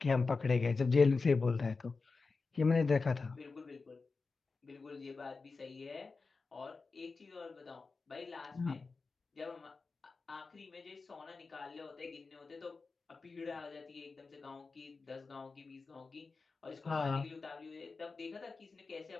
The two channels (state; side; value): quieter; right; 4.2 dB